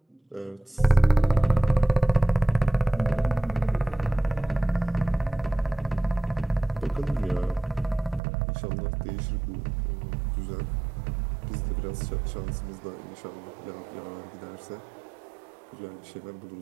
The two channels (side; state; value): left; drops out; at 8.2 s